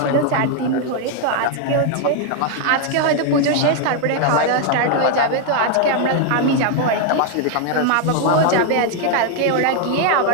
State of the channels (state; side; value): different; both; correlation 0.00